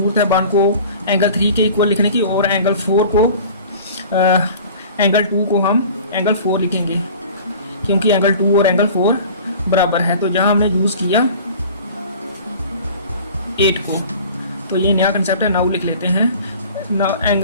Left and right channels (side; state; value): both; inverted; correlation -0.43